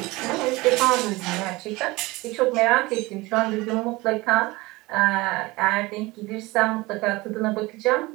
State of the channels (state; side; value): quieter; left; 21.9 dB